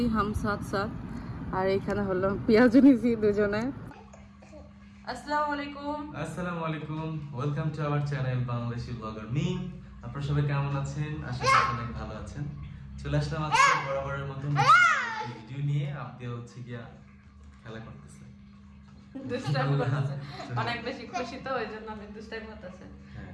হাম সাথ সাথ, আর এখানে হলো পেঁয়াজ নিয়েছি দুজনে। আসসালামু আলাইকুম। আসসালামু আলাইকুম, welcome to our channel Bangladeshi blogger Mim. আপনারা সবাই কেমন আছেন? আশা করি অনেক ভালো আছেন। চলে আসলাম আজকে বরাবরের মতো ভিডিও নিয়ে। আপনি হচ্ছে গিয়া খেলা করতেছে, অনেক বেশি খুশি তো ওই জন্য আমি দুষ্টাইম করতেছে,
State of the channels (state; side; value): identical; both; correlation 1.00